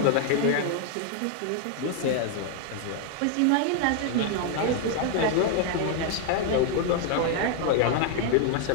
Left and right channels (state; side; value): different; both; correlation 0.00